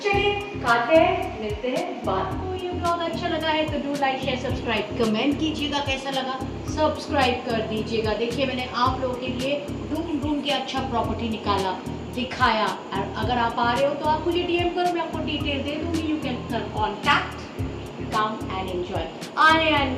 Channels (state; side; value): identical; both; correlation 1.00